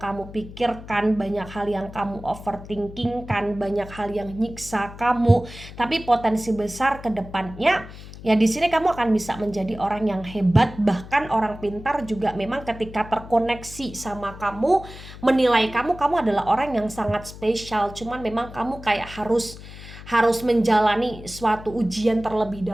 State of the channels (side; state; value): left; noise; hum, 15 dB below the sound